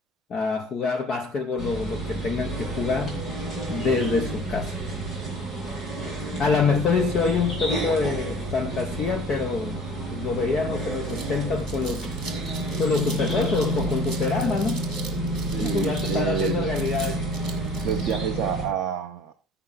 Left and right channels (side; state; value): both; normal; correlation 0.48